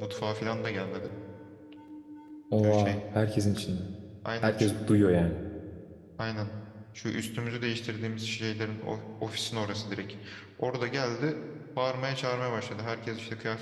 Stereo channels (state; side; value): identical; both; correlation 1.00